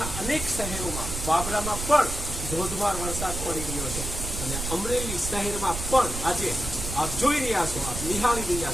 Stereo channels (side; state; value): right; noise; rumble, 6 dB below the sound